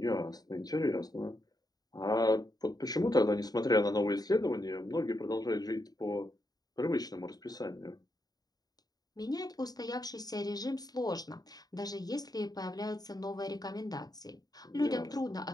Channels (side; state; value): right; late; 0.19 ms